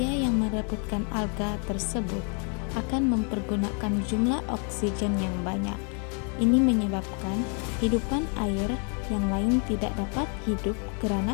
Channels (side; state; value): right; quieter; 39.0 dB